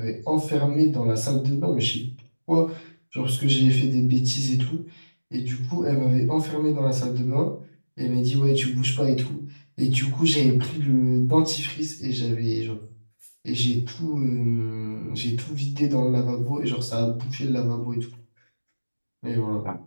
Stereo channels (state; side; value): inverted; both; correlation -1.00